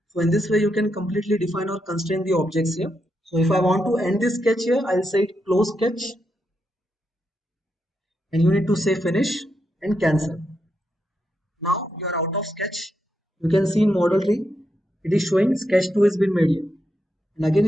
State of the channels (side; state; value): both; normal; correlation 0.83